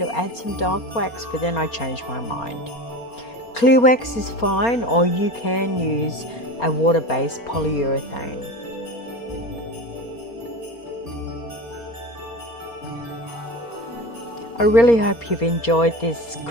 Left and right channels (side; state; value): right; late; 4.3 ms